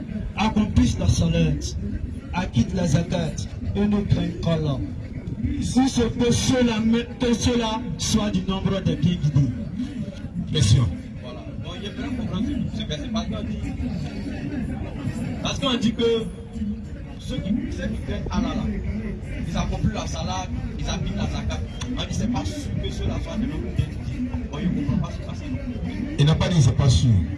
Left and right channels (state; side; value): identical; both; correlation 1.00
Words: Accomplissent la salat, acquittent la zakat et ne craignent qu'Allah. Si ce que cela soit du nombre des bien guidés. Question. Voilà. Donc j'aimerais comprendre ce verset parce qu'on dit que ceux qui craignent Allah là, ils accomplissent la salat, ils acquittent la zakat. On dit c'est pas sûr que cela soit du nombre des bien guidés. On ne comprend pas ce passage. Il n'a pas dit c'est pas sûr.